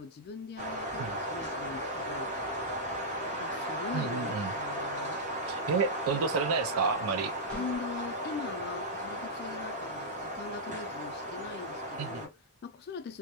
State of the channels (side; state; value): both; normal; correlation -0.09